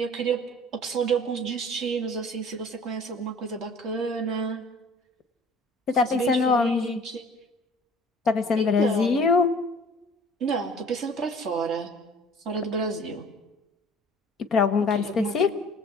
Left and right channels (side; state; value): both; normal; correlation 0.49